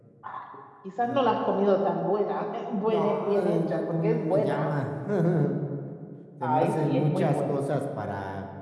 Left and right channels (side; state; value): both; identical; correlation 1.00